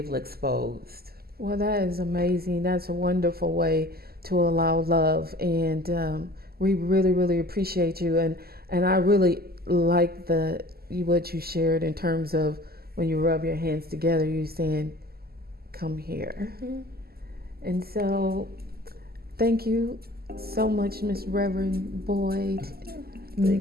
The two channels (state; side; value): late; left; 0.45 ms